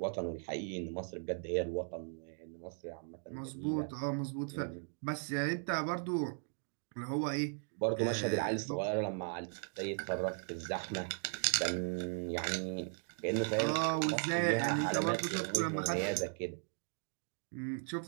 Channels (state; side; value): silent; left; 53 dB below the other